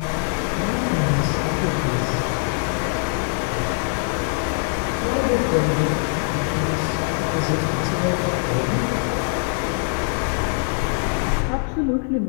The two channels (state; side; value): silent; right; 64 dB below the other